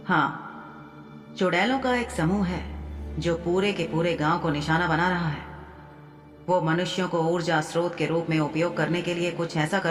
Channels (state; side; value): identical; both; correlation 1.00